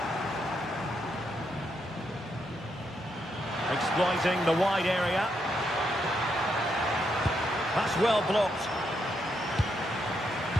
Exploiting the wide area. That's well blocked.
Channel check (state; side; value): normal; both; correlation 0.79